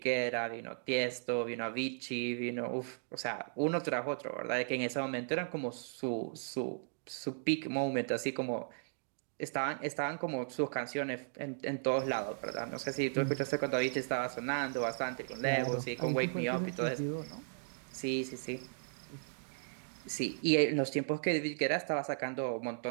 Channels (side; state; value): left; silent; digital silence